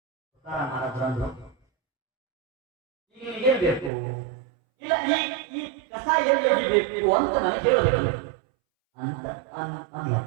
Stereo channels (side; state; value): left; drops out; at 3.9 s